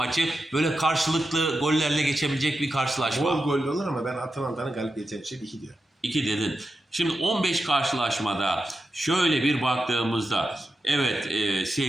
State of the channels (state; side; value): normal; both; correlation 0.89